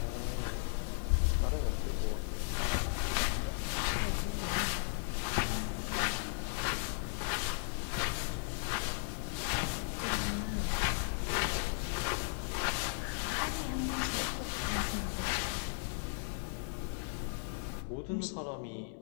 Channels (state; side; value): silent; right; 54 dB below the other